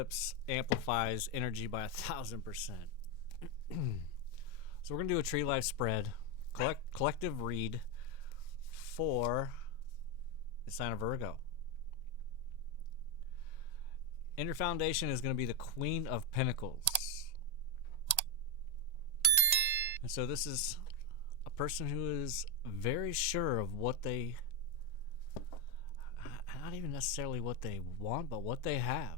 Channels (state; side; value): late; right; 1.8 ms